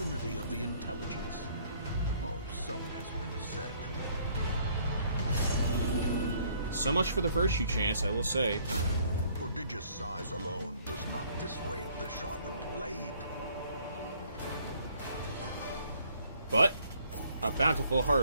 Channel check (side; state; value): both; inverted; correlation -0.62